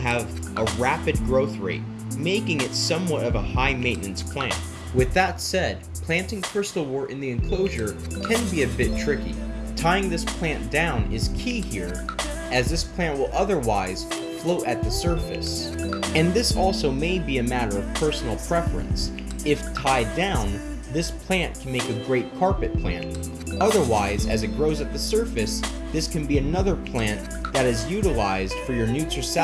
a rapid growth rate, making it somewhat of a high maintenance plant. With that said, planting Crystalwort in the enclosure can be a bit tricky. Tying this plant down is key here, as this plant will otherwise float at the surface. And this also may be a matter of personal preference. If tied down, this plant can make a great carpet plant. Otherwise, as it grows at the surface, this can be another plant that is utilized for your newts or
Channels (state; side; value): identical; both; correlation 1.00